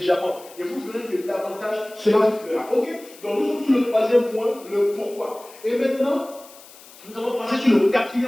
Et vous verrez que davantage cela vous fera. Ok? Donc nous sommes sur le troisième point, le pourquoi. Et maintenant, nous allons passer sur le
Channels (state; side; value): noise; left; hiss, 21 dB below the sound